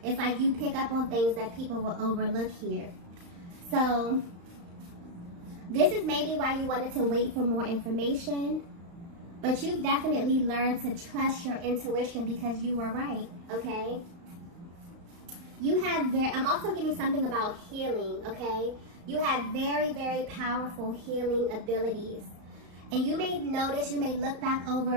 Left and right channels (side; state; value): left; late; 35 ms